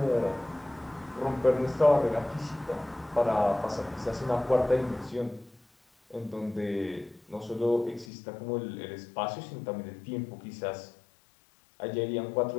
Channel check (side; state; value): right; drops out; at 8.1 s